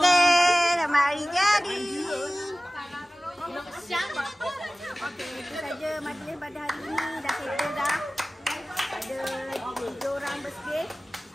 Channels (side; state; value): both; normal; correlation 0.97